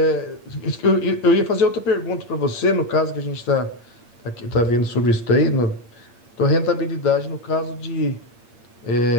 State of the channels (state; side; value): late; right; 8.7 ms